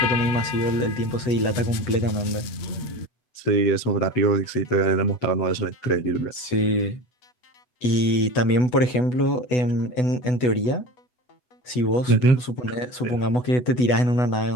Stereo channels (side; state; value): right; late; 8.1 ms